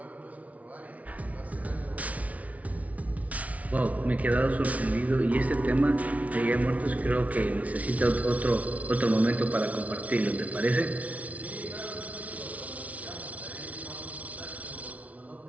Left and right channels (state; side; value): late; left; 0.068 ms